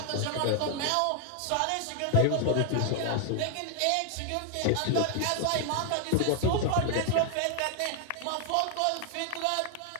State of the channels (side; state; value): both; different; correlation 0.00